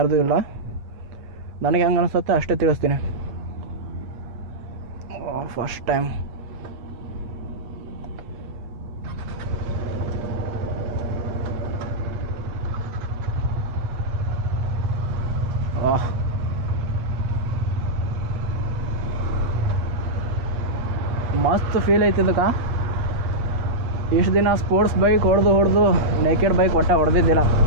ಇಲ್ಲ. ನನಗೆ ಹೆಂಗೆ ಅನಿಸುತ್ತೆ ಅಷ್ಟೇ ತಿಳಿಸ್ತೀನಿ. ಫಸ್ಟ್ ಟೈಮ್ ಮಸ್ತ್ ಫೀಲ್ ಐತಿ ಇದಕ್ಕೆ. ಇಷ್ಟು ದಿನ ಸ್ಪೋರ್ಟ್ಸ್ ಬೈಕ್ ಹೊಡೆದು ನೇಕೆಡ್ ಬೈಕ್ ಹೊಡೆದಿದ್ದಿಲ್ಲ.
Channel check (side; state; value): left; late; 8.4 ms